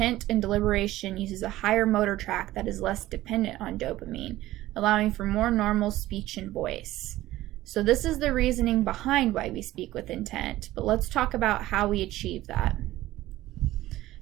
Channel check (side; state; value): left; quieter; 15.9 dB